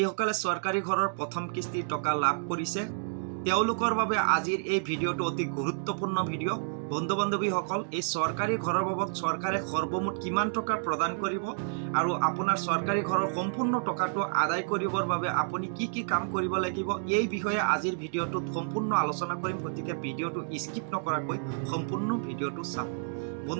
চৰকাৰী ঘৰৰ প্ৰথম কিস্তিৰ টকা লাভ কৰিছে তেওঁলোকৰ বাবে আজিৰ এই ভিডিঅ'টো অতি গুৰুত্বপূৰ্ণ ভিডিঅ'। বন্ধু বান্ধৱীসকল, এই চৰকাৰী ঘৰৰ বাবদ চৰকাৰে সৰ্বমুঠ কিমান টকা প্ৰদান কৰিব আৰু আপোনাৰ চৰকাৰী ঘৰৰ সম্পূৰ্ণ টকাটো আদায় কৰিবৰ বাবে আপুনি কি কি কাম কৰিব লাগিব এই বিষয়ে আজিৰ ভিডিঅ'টোত সম্পূৰ্ণ আলোচনা কৰিম। গতিকে ভিডিঅ'টো স্কিপ নকৰাকৈ সম্পূৰ্ণ ভিডিঅ'টো চাওক।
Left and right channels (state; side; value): silent; left; digital silence